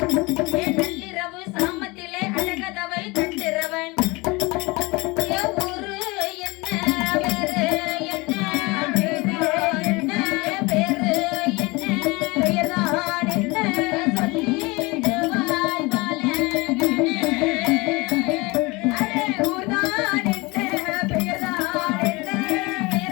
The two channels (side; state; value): right; quieter; 24.6 dB